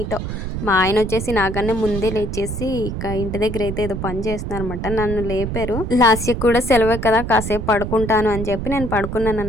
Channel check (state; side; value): noise; right; rumble, 5 dB below the sound